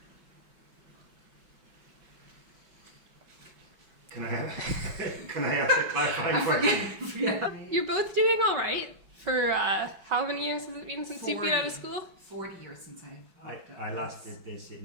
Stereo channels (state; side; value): late; left; 5.3 ms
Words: Can I ask a clarifying question? Yeah. You're both doing all right for how many years has it been since you've been out of school? 40 years since I last did this